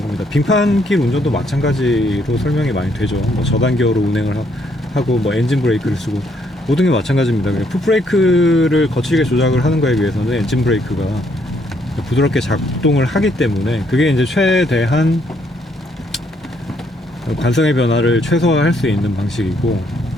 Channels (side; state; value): both; normal; correlation 0.70